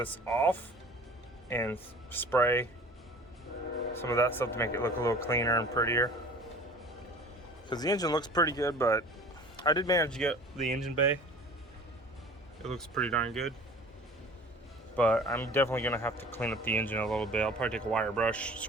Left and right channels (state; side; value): normal; both; correlation 0.44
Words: off and spray some of that stuff to make it look a little cleaner and prettier. Because the engine looks pretty good, but I did manage to get the engine bay. It looks pretty darn good. But I'm definitely gonna have to clean up the engine a little bit. I'll probably take a wire brush,